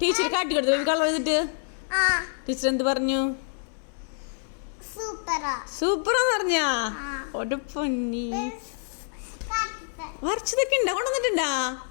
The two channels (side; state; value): right; silent; digital silence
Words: കാട്ടി കൊടുത്തു ബേബി കളർ ചെയ്തിട്ട്. ടീച്ചർ എന്ത് പറഞ്ഞു? സൂപ്പറാന്ന് പറഞ്ഞാ? ഒരു പൊന്നി വരച്ചതൊക്കെ ഉണ്ടാ കൊണ്ടുവന്നിട്ടുണ്ടാ?